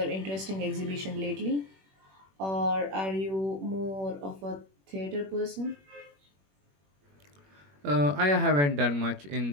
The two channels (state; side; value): late; left; 21 ms